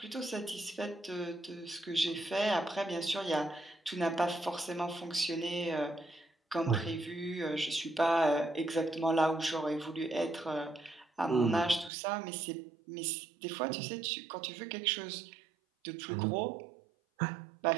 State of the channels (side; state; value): left; drops out; at 11.9 s